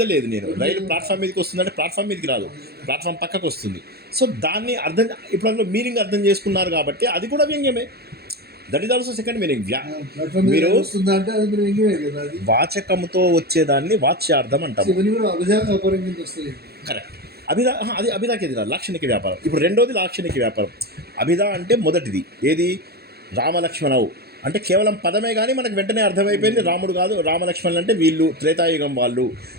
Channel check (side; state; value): left; late; 0.46 ms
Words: లేదు, నేను రైలు ప్లాట్ఫామ్ మీదకి వస్తుందంటే ప్లాట్ఫామ్ మీదకి రాదు, ప్లాట్ఫామ్ పక్కకు వస్తుంది. సో దాన్ని అర్థం, ఇప్పుడు అందులో మీనింగ్ అర్థం చేసుకున్నారు కాబట్టి అది కూడా వ్యంగ్యమే. That is also second meaning. మీరు వాచకముతో వచ్చేదాన్ని వాచ్యార్థం అంటాము. కరెక్ట్. అభిధా అది అభిధాకి ఎదురా లాక్షణిక వ్యాపారం. ఇప్పుడు రెండోది లాక్షణిక వ్యాపారం. అభిధా అంటే మొదటిది ఏది, రామలక్ష్మణవు అంటే కేవలం పదమే కానీ మనకు వెంటనే అర్థమైపోయింది రాముడు కాదు, రామలక్ష్మణులు అంటే వీళ్ళు త్రేతాయుగం వాళ్ళు,